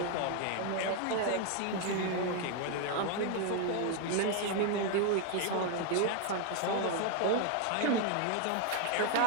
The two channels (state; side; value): different; both; correlation 0.00